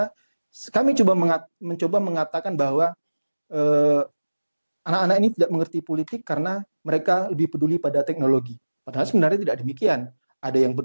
kami mencoba mengatakan bahwa anak-anak ini tidak mengerti politik karena mereka lebih peduli pada teknologi. Padahal sebenarnya tidak demikian. Ada yang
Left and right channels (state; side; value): inverted; both; correlation -1.00